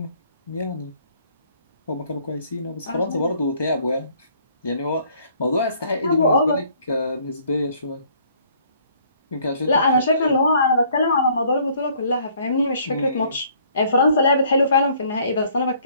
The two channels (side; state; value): both; inverted; correlation -0.60